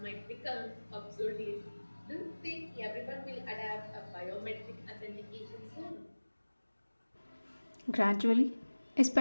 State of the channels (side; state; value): both; inverted; correlation -1.00